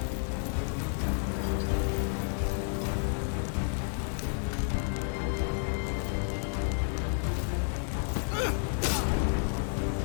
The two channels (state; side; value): silent; right; 57 dB below the other